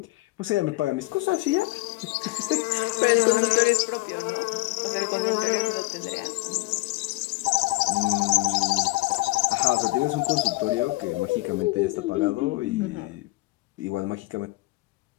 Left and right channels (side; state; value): right; quieter; 21.6 dB